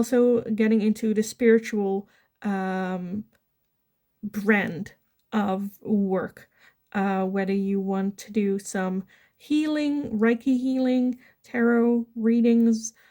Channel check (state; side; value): identical; both; correlation 1.00